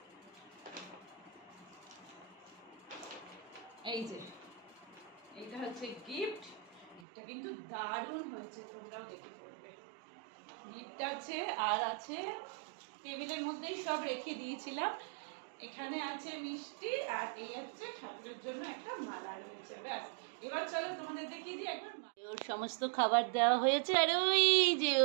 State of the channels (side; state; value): left; drops out; at 7.0 s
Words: এই যে এইটা হচ্ছে গিফট। গিফটটা কিন্তু দারুণ হয়েছে, তোমরাও দেখে পড়বে। গিফট আছে, আর আছে টেবিলের মধ্যেই সব রেখে দিয়েছিলাম। এখানে আছে মিষ্টি, আর এই হচ্ছে ঠাকুরের জন্য একটা মালা রয়েছে। ব্যাস, এবার চলো তোমাদের দেখিয়ে দিই একবার। ওর সমস্ত খাবার দেওয়া হয়েছে, আর ওই যে